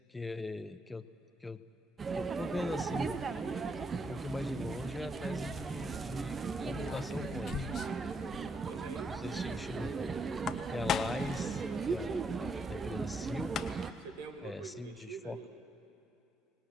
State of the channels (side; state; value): both; normal; correlation 0.78